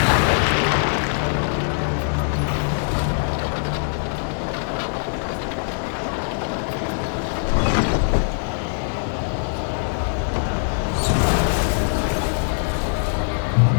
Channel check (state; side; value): silent; right; digital silence